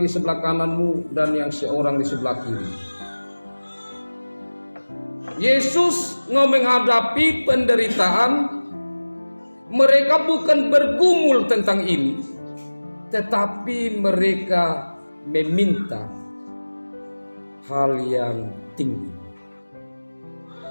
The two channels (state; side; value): inverted; both; correlation -1.00